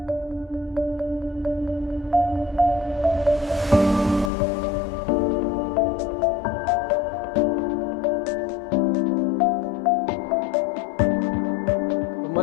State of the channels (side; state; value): right; drops out; at 4.3 s